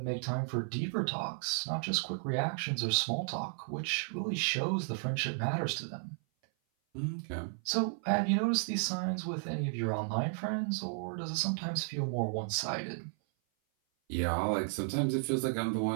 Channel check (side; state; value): left; silent; 55 dB below the other